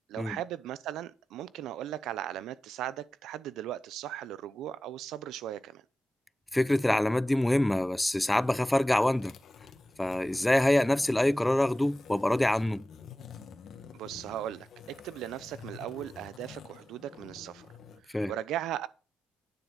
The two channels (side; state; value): both; normal; correlation 0.93